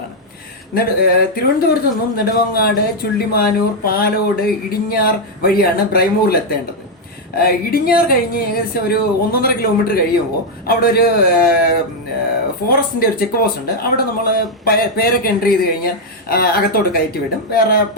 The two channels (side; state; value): both; normal; correlation 0.00